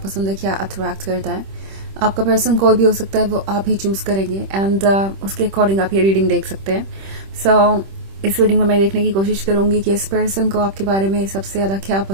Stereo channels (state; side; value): late; left; 26 ms